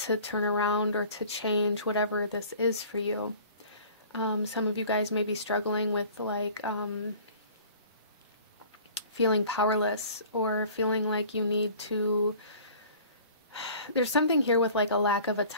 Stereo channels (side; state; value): both; inverted; correlation -0.47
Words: turn around or to change whatever this is for you. Some of you guys may be struggling with like feeling powerless, or feeling like you need to, there's something here with like a lack of